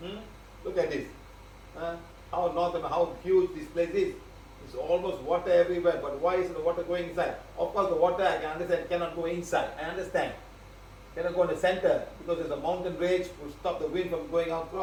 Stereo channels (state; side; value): identical; both; correlation 1.00